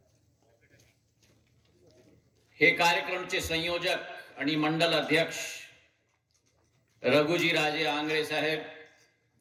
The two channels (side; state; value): both; identical; correlation 1.00